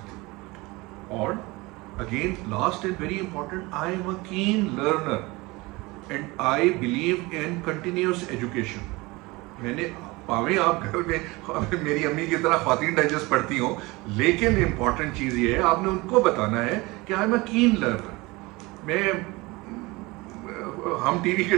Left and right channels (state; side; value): quieter; left; 23.0 dB